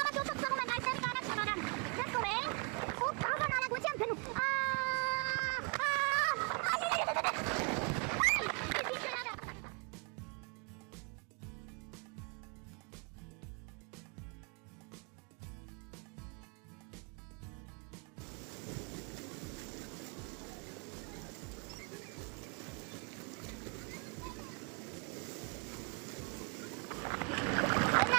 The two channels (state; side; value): quieter; left; 34.7 dB